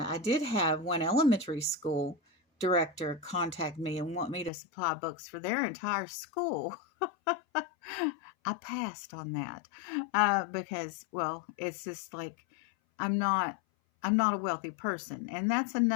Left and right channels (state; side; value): drops out; right; at 4.5 s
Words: did have one elementary school director contact me and want me to supply books for their entire school. I passed on that because, well, it's just like I'm not a wealthy person, and that's